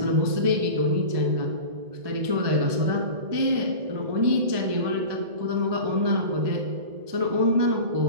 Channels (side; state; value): left; late; 1.2 ms